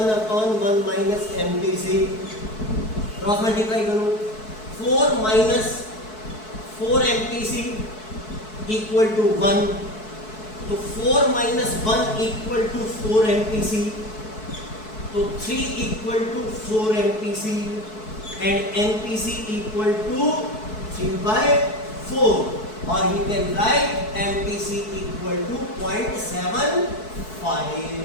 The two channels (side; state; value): right; late; 4.6 ms